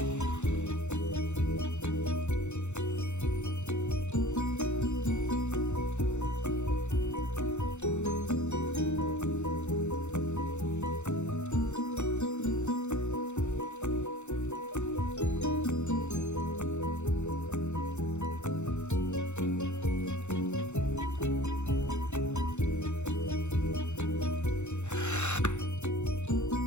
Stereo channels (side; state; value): right; late; 0.83 ms